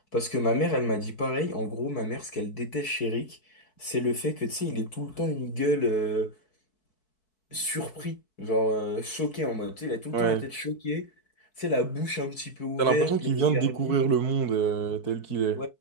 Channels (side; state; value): right; late; 4.6 ms